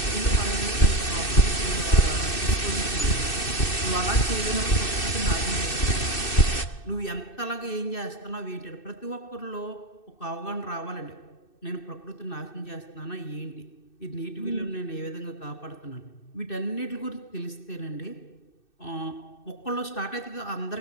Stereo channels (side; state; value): right; late; 2.6 ms